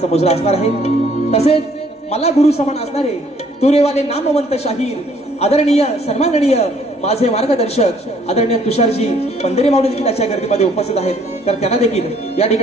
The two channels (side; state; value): both; normal; correlation 0.62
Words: मुजरा असणार आहे। तसेच मला गुरु समान असणारे तुरेवाले नामवंत शाहीर आदरणीय सन्माननीय माझे मार्गदर्शक आदरणीय तुषारजी पंधरे मावळे देखील आजच्या गर्दीमध्ये उपस्थित आहेत। तर त्यांना देखील या